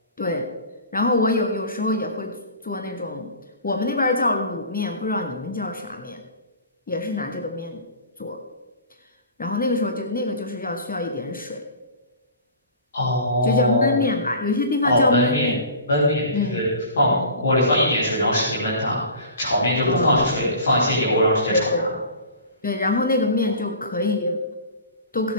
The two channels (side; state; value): both; inverted; correlation -0.40